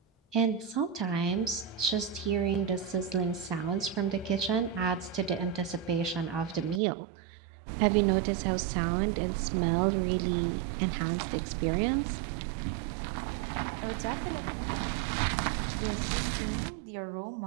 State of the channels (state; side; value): drops out; left; at 6.8 s